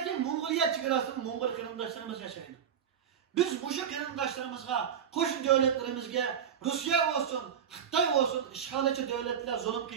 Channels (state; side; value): quieter; left; 8.2 dB